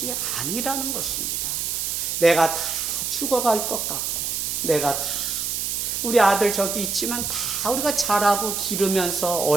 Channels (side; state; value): right; noise; hiss, 1 dB below the sound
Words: 아니라는 것입니다. 내가 다 죽어갈 것 같고, 내가 다 우리 아들 저기 있지만 다 우리가 자라고 기르면서